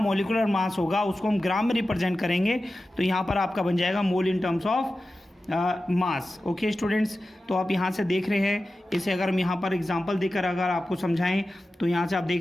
मास होगा उसको हम ग्राम में रिप्रेजेंट करेंगे, तो यहाँ पर आपका बन जाएगा mole in terms of mass. Okay students, तो आप यहाँ से देख रहे हैं, इसे अगर हम यहाँ पर एग्जांपल देकर अगर आपको समझाएं तो यहाँ से आप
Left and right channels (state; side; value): normal; both; correlation 0.94